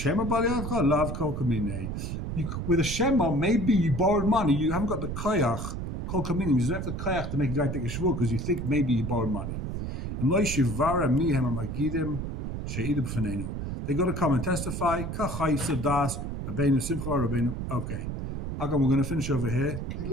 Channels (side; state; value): right; noise; rumble, 4 dB below the sound